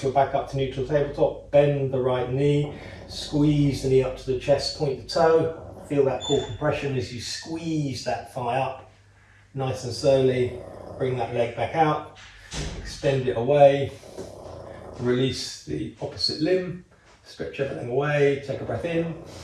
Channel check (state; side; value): identical; both; correlation 1.00